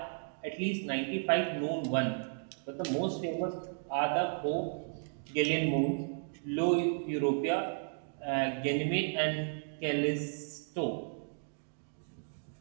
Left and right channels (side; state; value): left; silent; digital silence